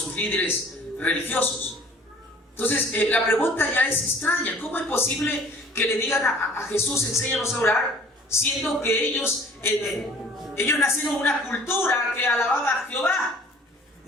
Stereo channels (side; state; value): both; normal; correlation 0.51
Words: líderes religiosos. Entonces, la pregunta ya es extraña. ¿Cómo es posible que le digan a Jesús, enséñanos a orar, siendo que ellos nacieron en una cultura que alababa a Jehová,